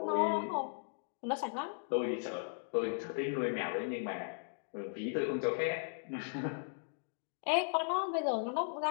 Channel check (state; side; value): silent; right; digital silence